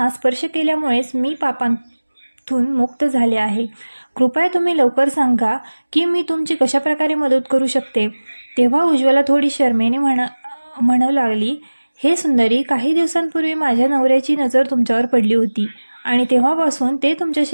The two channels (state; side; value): inverted; both; correlation -1.00